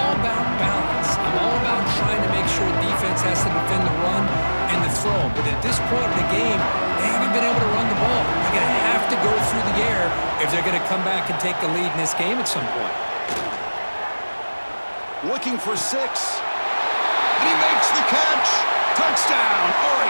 about balance. I'm all about trying to make sure defense has to defend the run and the throw. But at this point in the game, they haven't been able to run the ball. They're going to have to go through the air if they're going to come back and take the lead in this game at some point. Looking for 6. And he makes the catch. Touchdown,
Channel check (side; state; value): both; inverted; correlation -1.00